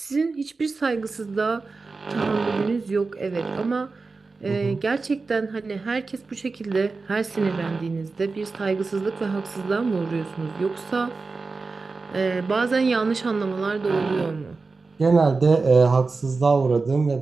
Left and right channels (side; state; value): left; quieter; 4.1 dB